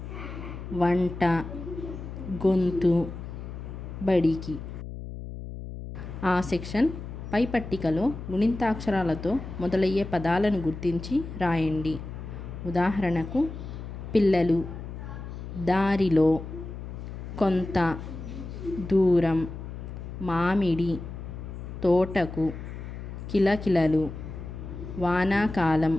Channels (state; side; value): noise; left; hum, 9 dB below the sound